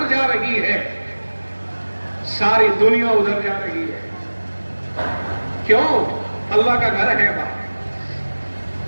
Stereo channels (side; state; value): both; inverted; correlation -1.00